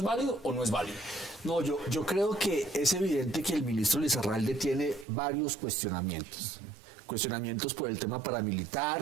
válido o no es válido? No, yo creo que es evidente que el ministro Lizarralde tiene varios cuestionamientos. Cuestionamientos por el tema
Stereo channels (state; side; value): drops out; left; at 5.1 s